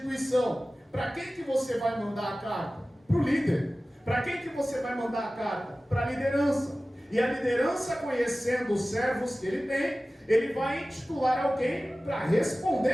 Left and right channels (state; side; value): normal; both; correlation 0.97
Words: para quem que você vai mandar a carta? Para o líder. Para quem que você vai mandar a carta? Para a liderança. E a liderança, conhecendo os servos que ele tem, ele vai intitular alguém para